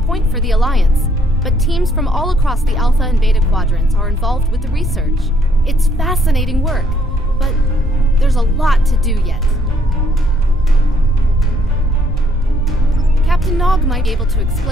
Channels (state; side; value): normal; both; correlation 0.68